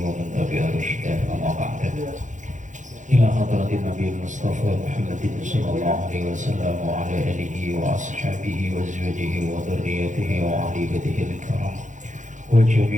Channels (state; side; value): late; left; 0.36 ms